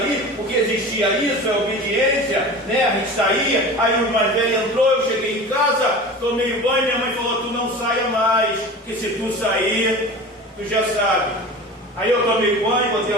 porque existia isso, a obediência, né? A gente saía, aí os mais velhos entrou, eu cheguei em casa, tomei banho, minha mãe falou, tu não saia mais, que se tu sair, tu já sabe. Aí eu tomei banho, botei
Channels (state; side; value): normal; both; correlation 0.35